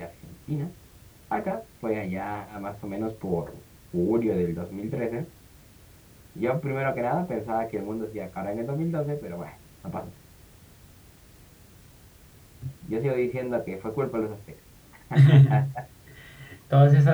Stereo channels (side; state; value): both; identical; correlation 1.00